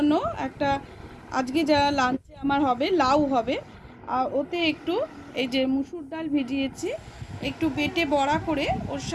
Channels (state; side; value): identical; both; correlation 1.00